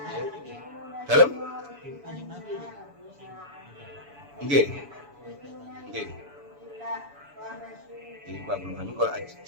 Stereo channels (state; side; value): late; left; 7.0 ms